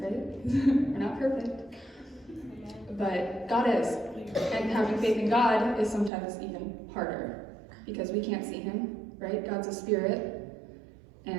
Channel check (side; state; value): left; drops out; at 6.1 s